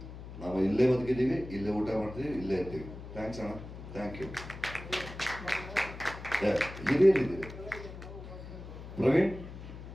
ನಾವು ಇಲ್ಲೇ ಬದುಕಿದ್ದೀವಿ, ಇಲ್ಲೇ ಊಟ ಮಾಡ್ತೀವಿ, ಇಲ್ಲೇ ಇರ್ತೀವಿ. ಥ್ಯಾಂಕ್ಸ್ ಅಣ್ಣ, ಥ್ಯಾಂಕ್ ಯು. ಹಿರಿಯರಿದ್ದೀವಿ. ಪ್ರವೀಣ್,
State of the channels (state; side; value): noise; left; hum, 12 dB below the sound